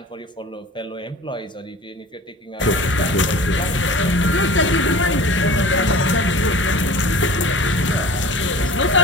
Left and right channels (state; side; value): normal; both; correlation 0.41